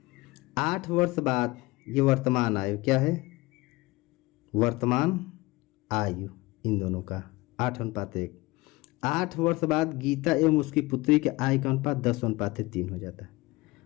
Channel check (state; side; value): quieter; right; 21.4 dB